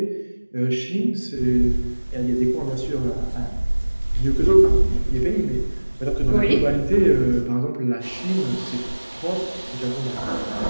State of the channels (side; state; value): both; inverted; correlation -1.00